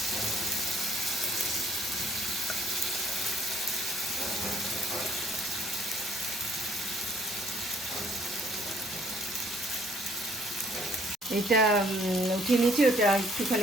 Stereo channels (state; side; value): normal; both; correlation 0.62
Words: এটা উঠিয়ে নিয়েছি। ওটা